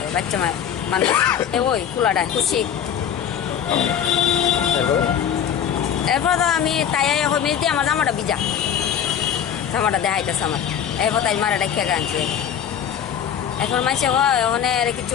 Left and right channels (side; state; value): right; quieter; 8.8 dB